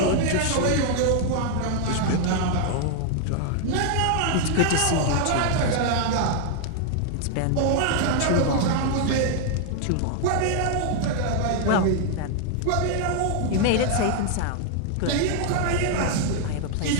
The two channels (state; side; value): different; both; correlation 0.00